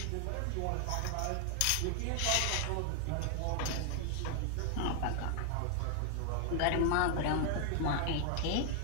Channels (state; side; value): different; both; correlation 0.00